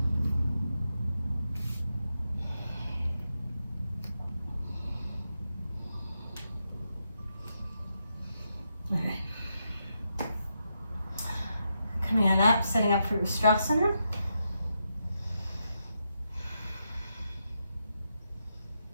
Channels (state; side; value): inverted; both; correlation -0.84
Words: All right. Coming on up, setting up for Ustrasana.